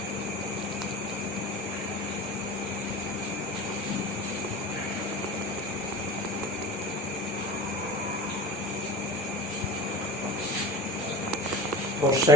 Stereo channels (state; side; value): normal; both; correlation 0.35